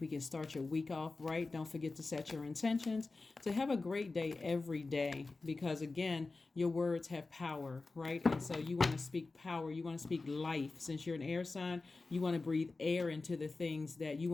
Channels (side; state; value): right; quieter; 3.7 dB